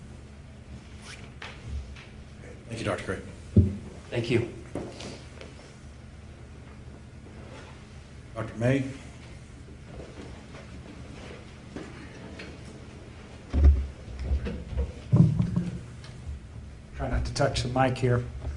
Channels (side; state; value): both; identical; correlation 1.00